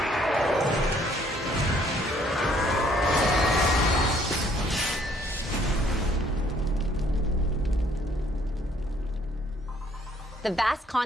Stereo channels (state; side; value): normal; both; correlation 0.63